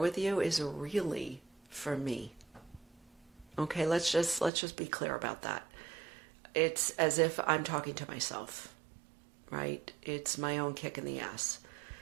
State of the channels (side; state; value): left; drops out; at 4.5 s